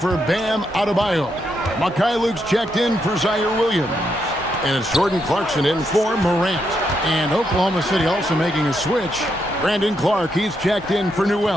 Bam Adebayo. Mikhailuk's checked in for Zaire Williams. And it's Jordan Clarkson in for Morant. And Oklahoma City also making a switch. Brandon Clark, he's checked in for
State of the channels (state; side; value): normal; both; correlation 0.80